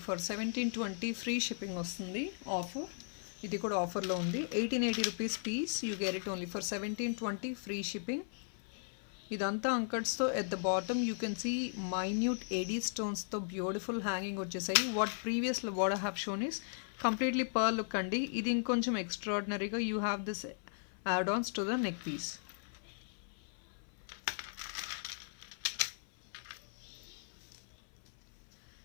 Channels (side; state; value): right; silent; 53 dB below the other